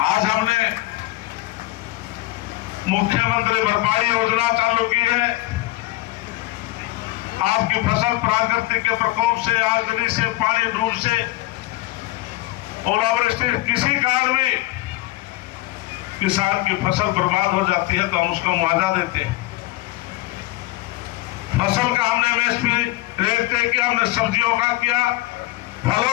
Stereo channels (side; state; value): right; quieter; 18.4 dB